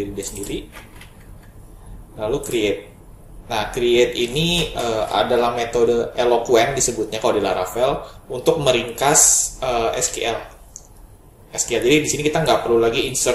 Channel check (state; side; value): identical; both; correlation 1.00